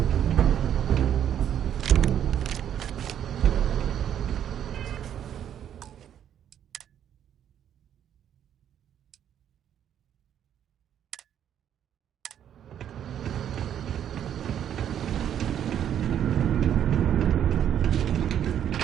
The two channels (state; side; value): quieter; left; 9.8 dB